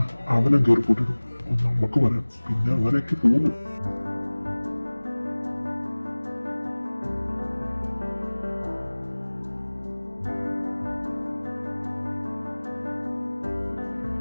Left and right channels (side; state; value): both; inverted; correlation -1.00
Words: അവനെ കയറിപ്പോട്ടിടും, നമുക്ക് വരാം. പിന്നെ അങ്ങനെയൊക്കെ പോകുന്നു.